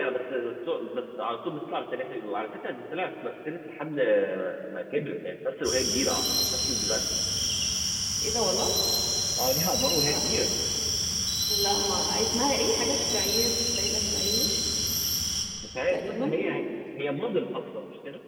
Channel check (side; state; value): both; identical; correlation 1.00